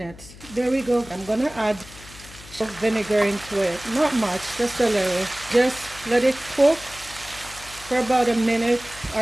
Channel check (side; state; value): left; noise; hum, 18 dB below the sound